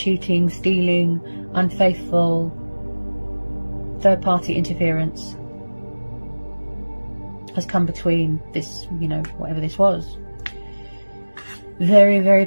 stealing, unfaithful, third-party interference has come between this, you know, whatever this was. Very, very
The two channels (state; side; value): inverted; both; correlation -1.00